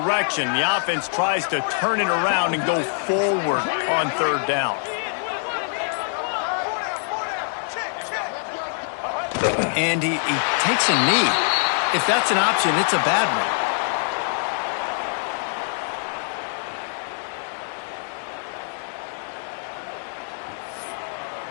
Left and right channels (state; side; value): silent; right; digital silence